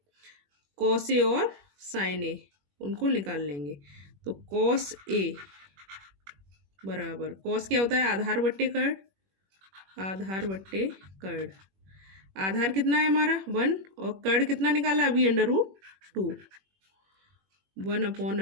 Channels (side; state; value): left; late; 21 ms